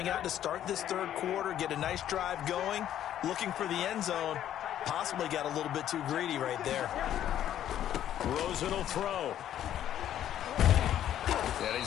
out to start this 3rd quarter, get a nice drive going, looking for the end zone. Possibly got a little bit too greedy right there. Rosen will throw. And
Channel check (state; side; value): quieter; right; 11.2 dB